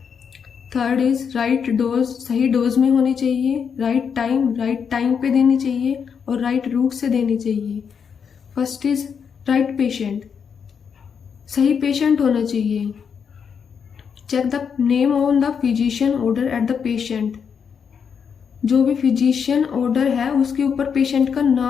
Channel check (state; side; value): quieter; right; 6.8 dB